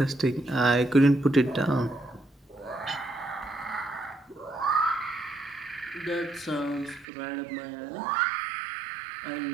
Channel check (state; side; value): drops out; left; at 7.1 s